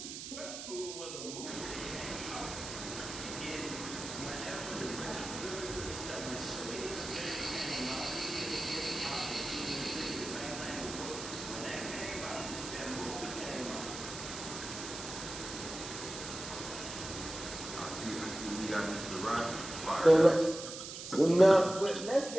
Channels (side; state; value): right; noise; hiss, 9 dB below the sound